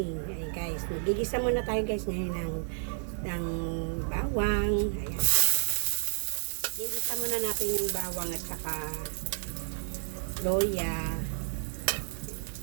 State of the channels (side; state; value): left; silent; digital silence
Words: Ayun guys, magigisa muna tayo guys ngayon ng bawang. Ayan. Gigisa muna natin yung bawang at saka loya.